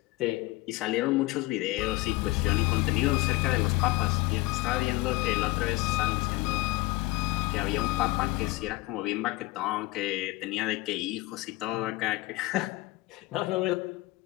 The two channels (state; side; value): quieter; right; 19.9 dB